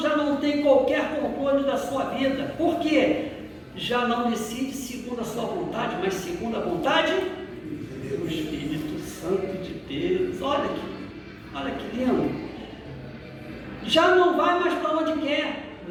não tem qualquer controle da sua vida. Por quê? já não decide segundo a sua vontade, mas segundo a vontade do Espírito Santo de Deus. Olha que lindo. Já não vai mais para onde quer,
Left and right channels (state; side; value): identical; both; correlation 1.00